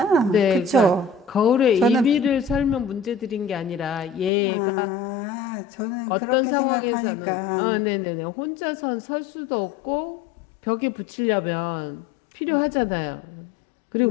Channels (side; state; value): right; drops out; at 4.3 s